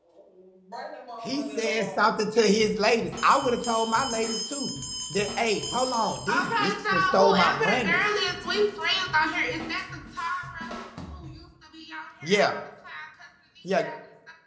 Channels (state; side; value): identical; both; correlation 1.00